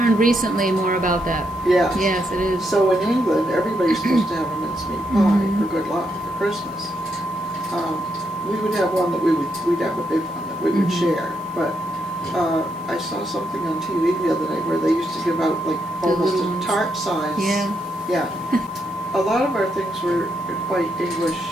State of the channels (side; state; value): left; noise; hiss, 25 dB below the sound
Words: recently more about that. Yes. Yes, it is. So in England, everybody's supposed to have a mincemeat pie Mhm. for good luck for Christmas. We would have one that we'd have a big one that we would Mhm. share. But I saw something on TV the other night where they used to give out like The almost little a ones. tart size. Yeah. Yeah. A lot of our things were quite English,